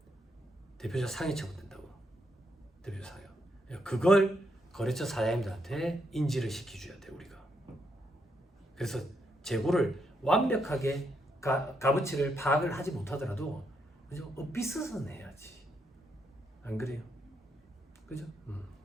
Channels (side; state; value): both; normal; correlation 0.78